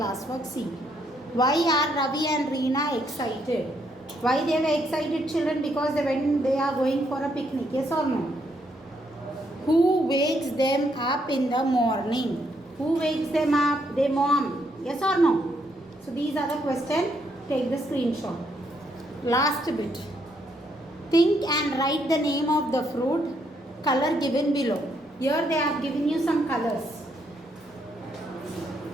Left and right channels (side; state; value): both; normal; correlation 0.74